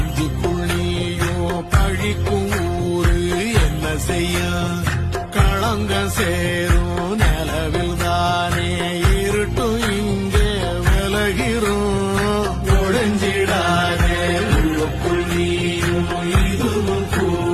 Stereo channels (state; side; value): identical; both; correlation 1.00